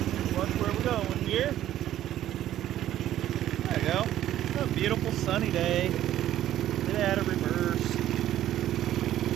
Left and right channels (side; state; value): left; quieter; 12.6 dB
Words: Watch where we're going here. There you go. What a beautiful sunny day. Get out of reverse.